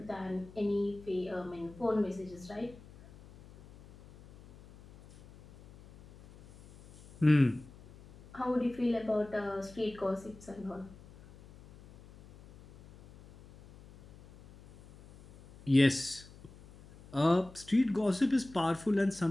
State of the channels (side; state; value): left; noise; hum, 21 dB below the sound